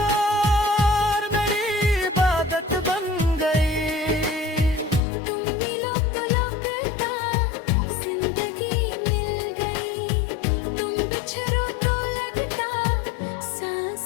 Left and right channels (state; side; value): drops out; right; at 5.0 s